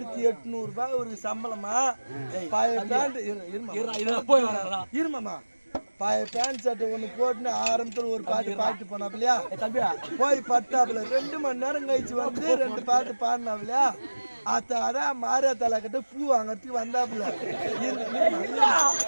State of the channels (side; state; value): both; inverted; correlation -1.00